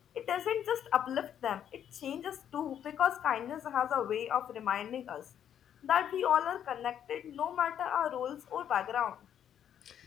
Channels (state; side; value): quieter; right; 9.5 dB